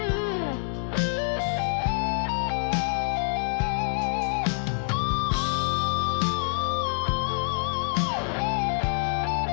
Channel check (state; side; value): silent; right; 59 dB below the other